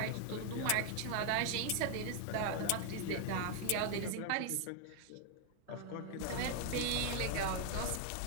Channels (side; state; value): both; different; correlation 0.00